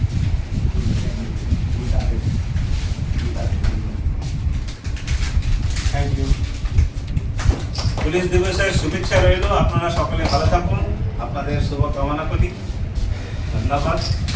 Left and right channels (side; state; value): both; identical; correlation 1.00